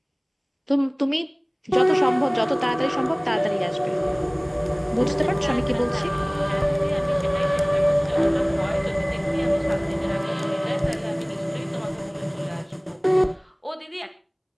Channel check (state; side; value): identical; both; correlation 1.00